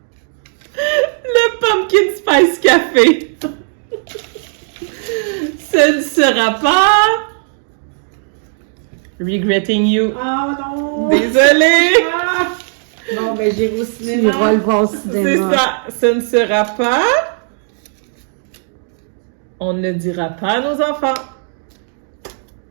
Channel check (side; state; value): left; silent; 58 dB below the other